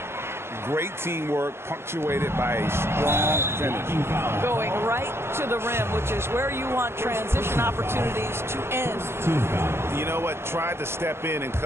Great teamwork, punctuated by a strong finish. Going right to the rim, which is where you want transition opportunities to end. You know what? Tried to step in and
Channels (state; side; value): late; left; 0.12 ms